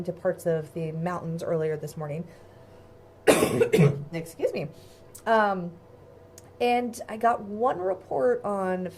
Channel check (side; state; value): both; identical; correlation 1.00